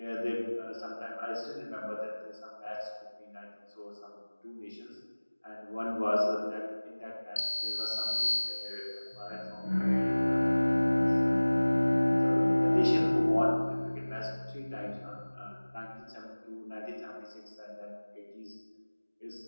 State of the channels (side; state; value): both; inverted; correlation -1.00